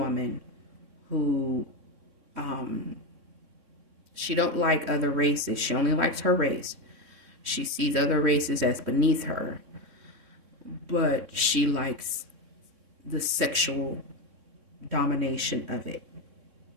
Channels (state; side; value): late; left; 3.6 ms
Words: who, she don't like other races. She only likes her race. She sees other races as beneath her. But she likes the sexual domination of it.